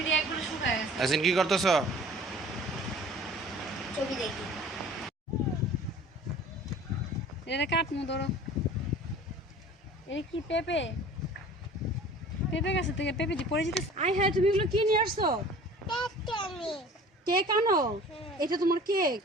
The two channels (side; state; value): both; normal; correlation 0.45